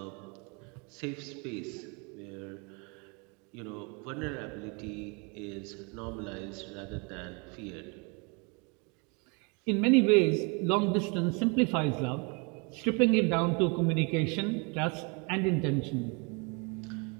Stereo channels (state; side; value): quieter; left; 32.3 dB